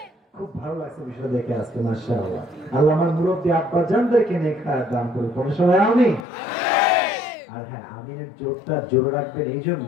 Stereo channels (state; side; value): drops out; right; at 6.2 s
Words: খুব ভালো লাগছে বিষয় দেখে আজকে, মাশাআল্লাহ। আল্লাহ আমার মুরব্বী আব্বা জানদেরকে নেক হায়াত দান করুন। কোন সবাই আমিন। আর হ্যাঁ, আমিনের জোরটা জোরে রাখবেন এই